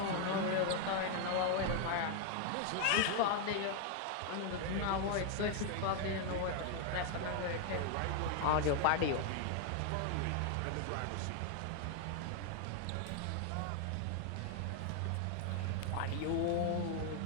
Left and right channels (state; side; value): different; both; correlation 0.01